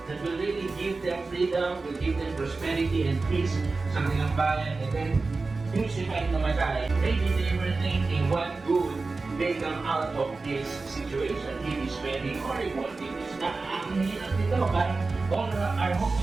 that will really give them freedom, will give them prosperity and peace sa kanilang bayan, and then crucified na namatay. Maybe they were thinking what good may come out of this situation. It is very horrible. It is not ang hirap nito. Parang all our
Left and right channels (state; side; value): quieter; left; 3.8 dB